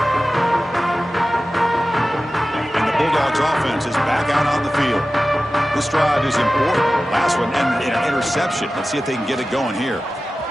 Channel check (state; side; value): normal; both; correlation 0.95